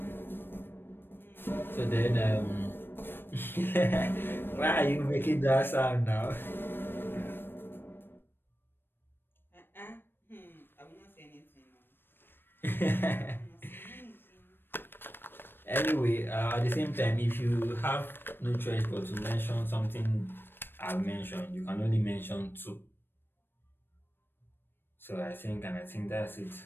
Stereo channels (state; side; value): late; right; 0.099 ms